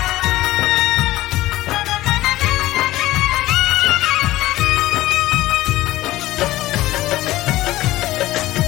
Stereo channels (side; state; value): right; quieter; 16.7 dB